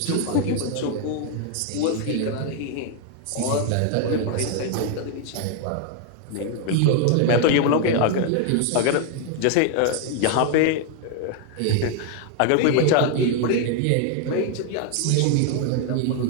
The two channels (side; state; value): both; different; correlation 0.00